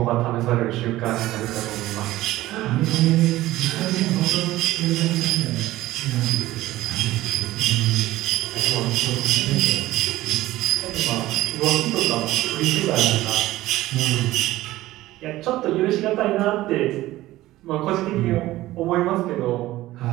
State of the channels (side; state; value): left; quieter; 16.5 dB